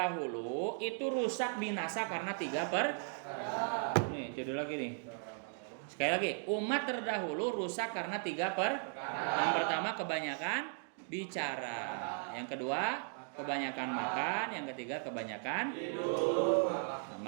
itu rusak binasa karena 3 perkara. Nih, judul lagi nih. Sekali lagi, umat terdahulu rusak karena 3 perkara. Yang pertama kebanyakan bicara. Yang kedua kebanyakan makan. Yang ketiga kebanyakan tidur. Nah,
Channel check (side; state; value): left; silent; 53 dB below the other